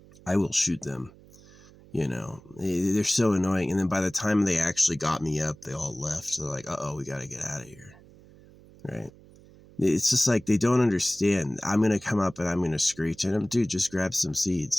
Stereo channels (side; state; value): right; noise; hum, 23 dB below the sound